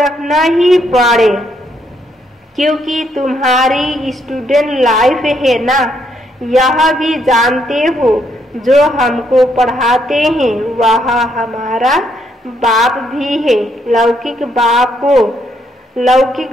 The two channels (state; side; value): normal; both; correlation 0.74